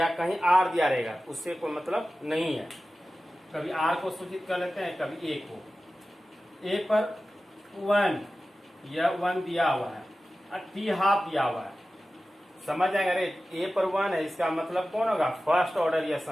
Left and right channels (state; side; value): normal; both; correlation 0.95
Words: कहीं आर दिया रहेगा, उससे कोई मतलब नहीं है। कभी आर को सूचित कर लेते हैं, कभी ए को। ए पर 1 या 1 दिया हुआ है और टी हाफ दिया हुआ है, समझ जाएंगे। अरे ए पर 1 है, इसका मतलब कौन होगा, फर्स्ट ऑर्डर